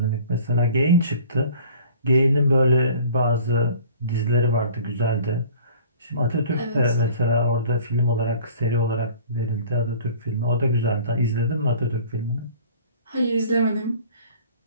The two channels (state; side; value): inverted; both; correlation -0.48